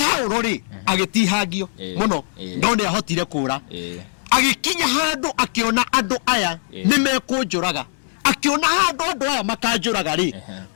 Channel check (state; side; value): silent; right; digital silence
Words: ri agitihangio muno no ni ahotire kura agikinya handu akiona andu aya nimekunjuraga akiona handu andu aya makanjuraga ri